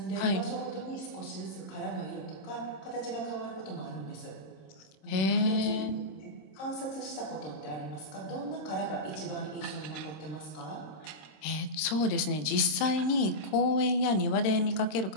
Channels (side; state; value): right; late; 26 ms